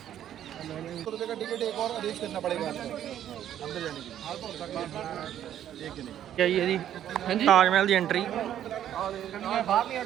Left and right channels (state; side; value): quieter; left; 10.9 dB